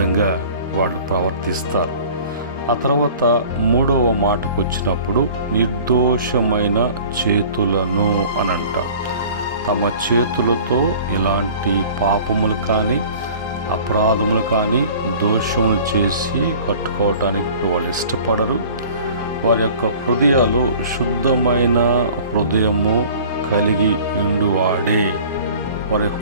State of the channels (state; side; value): inverted; both; correlation -0.46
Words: వాళ్ళు ప్రవర్తిస్తారు. ఆ తర్వాత 3వ మాటకు వచ్చినప్పుడు, నిర్దోషమైన చేతులను అని అంటారు. తమ చేతులతో ఇలాంటి పాపములు కానీ, అపరాధములు కానీ, దోషములు చేసి కట్టుకోవటానికి వాళ్ళు ఇష్టపడరు. వారి యొక్క హృదయాలు శుద్ధమైన హృదయము కలిగి ఉండువాడే. వారి